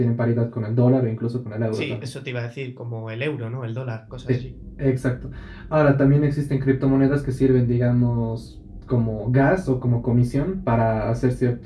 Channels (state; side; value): identical; both; correlation 1.00